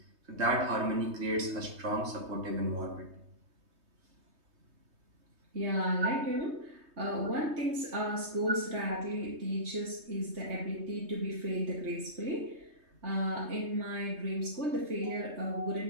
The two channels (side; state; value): left; late; 3.2 ms